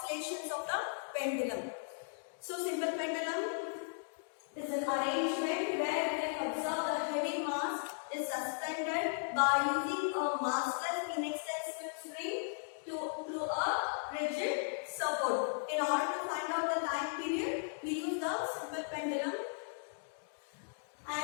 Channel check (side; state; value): right; silent; digital silence